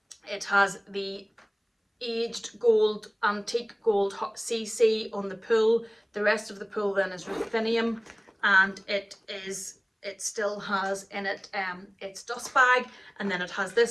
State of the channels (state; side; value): identical; both; correlation 1.00